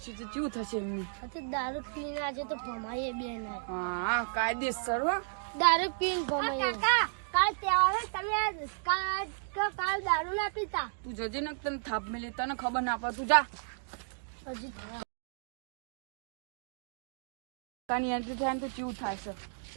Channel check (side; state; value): left; silent; digital silence